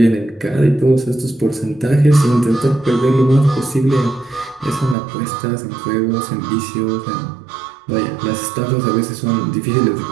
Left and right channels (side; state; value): left; drops out; at 5.0 s